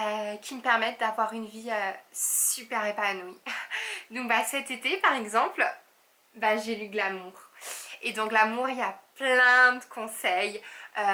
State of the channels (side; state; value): both; identical; correlation 1.00